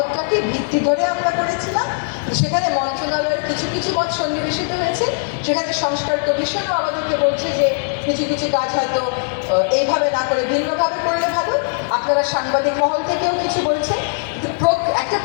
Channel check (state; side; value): silent; right; 66 dB below the other